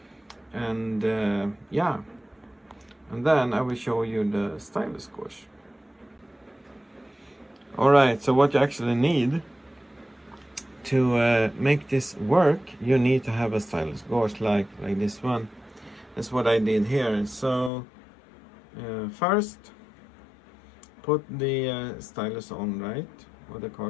And yeah, and then I will show you the stylus gauge. Alright, so what you actually need to make this work, you need to have a stylus gauge like this one. That's what I did here. So first put the stylus on, right, or the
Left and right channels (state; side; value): drops out; right; at 17.7 s